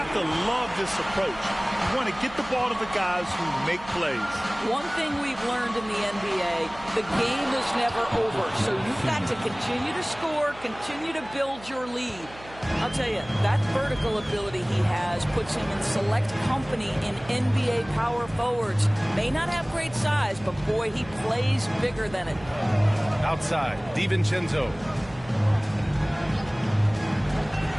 to love this approach. You want to get the ball to the guys who make plays. One thing we've learned in the NBA, the game is never over. So you've got to continue to score, continue to build your lead. I'll tell you, that vertical ability he has puts him in select company in NBA power forwards. May not have great size, but boy, he plays bigger than it. Outside, DiVincenzo.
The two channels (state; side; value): noise; right; hum, 19 dB below the sound